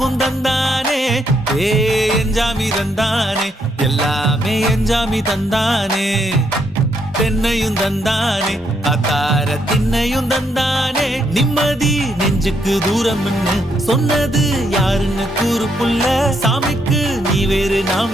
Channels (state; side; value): normal; both; correlation 0.75